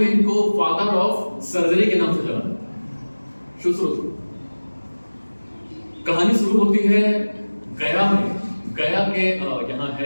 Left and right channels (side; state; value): both; inverted; correlation -1.00